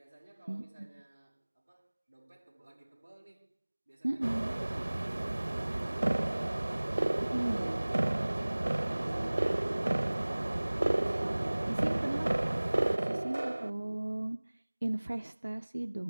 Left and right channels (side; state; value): both; inverted; correlation -1.00